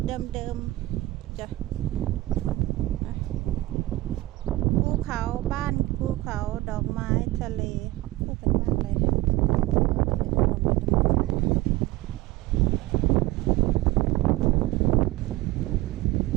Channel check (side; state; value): left; quieter; 18.2 dB